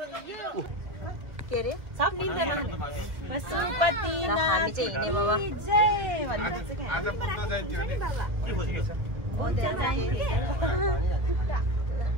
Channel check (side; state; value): left; late; 1.4 ms